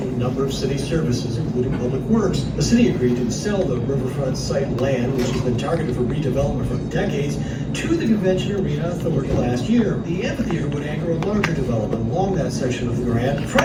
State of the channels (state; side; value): identical; both; correlation 1.00